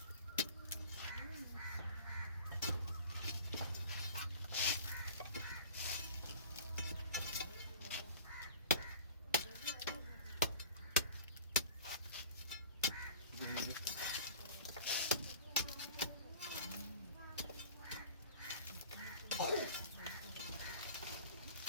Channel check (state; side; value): inverted; both; correlation -0.41